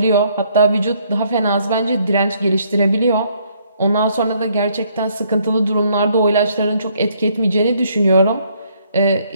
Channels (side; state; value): both; inverted; correlation -0.67